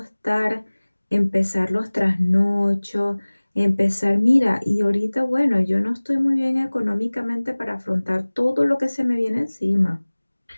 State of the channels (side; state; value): both; inverted; correlation -1.00